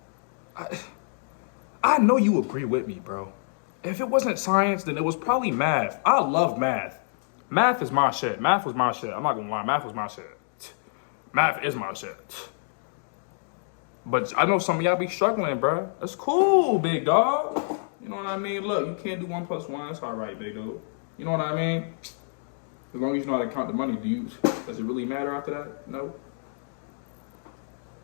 I know you agree with me, bro. If it wasn't science, then it was probably math. I love math. Math is my shit. Math was my shit. I'm not gonna lie, math was my shit. Math is my shit. But I know some of y'all be struggling, bro. That's cool, big dog. You know what I mean? Look, you can't do 1 + 1. It's all right, big dude. You know what I mean? As long as you know how to count the money, does it really matter after that? No.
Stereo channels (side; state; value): right; silent; digital silence